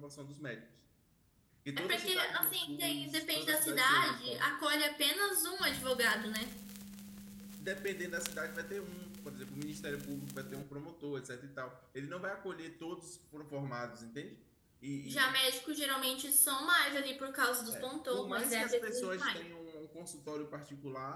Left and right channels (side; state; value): both; identical; correlation 1.00